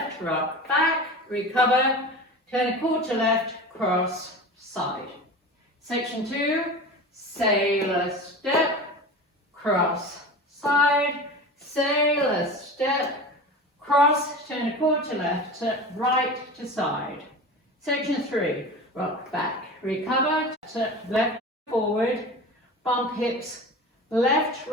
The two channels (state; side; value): normal; both; correlation 0.32